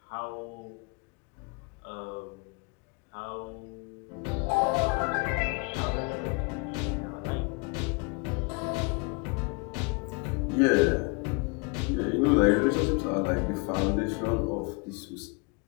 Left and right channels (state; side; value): quieter; right; 31.4 dB